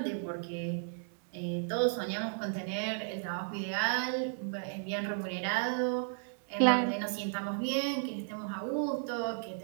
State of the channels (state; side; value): silent; left; digital silence